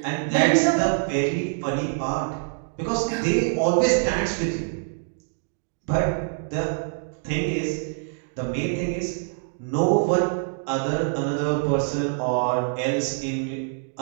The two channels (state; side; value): silent; left; digital silence